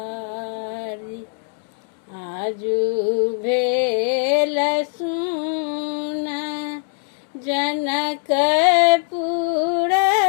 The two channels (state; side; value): silent; right; 61 dB below the other